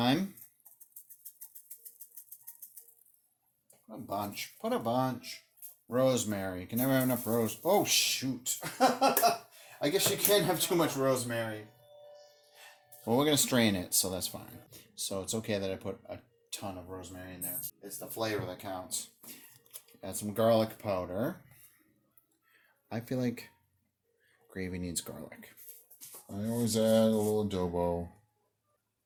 Put a bunch. Rosemary. You can never have enough rose. Oh, shoot. I guess you can't have too much rosemary. Well, we're going to strain it, so that's fine. So it's okay that I put a ton of rosemary in there. It's the flavor that counts. Add some garlic powder. I feel like gravy needs garlic. I always add a little adobo.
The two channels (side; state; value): both; identical; correlation 1.00